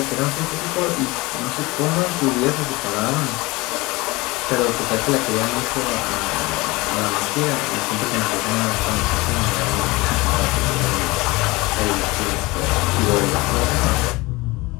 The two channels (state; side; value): quieter; right; 22.6 dB